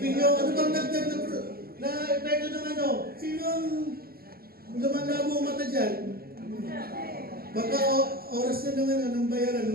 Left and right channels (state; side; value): late; left; 0.44 ms